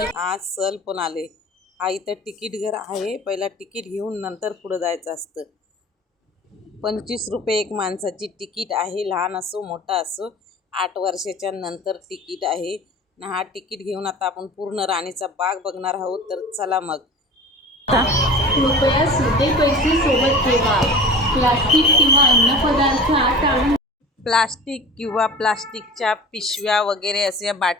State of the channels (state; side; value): normal; both; correlation 0.38